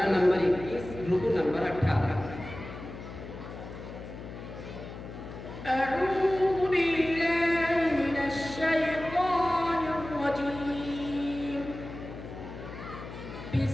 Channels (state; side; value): noise; left; hum, 12 dB below the sound